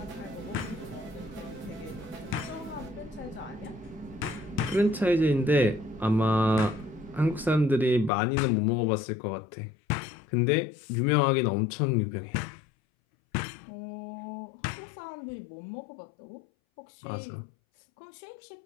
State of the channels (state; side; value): drops out; right; at 8.1 s